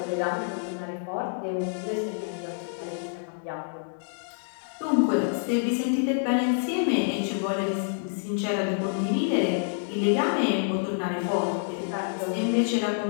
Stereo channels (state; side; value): silent; right; digital silence